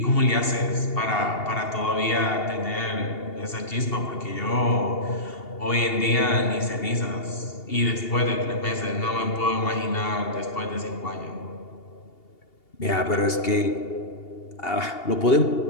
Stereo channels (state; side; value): late; right; 2.8 ms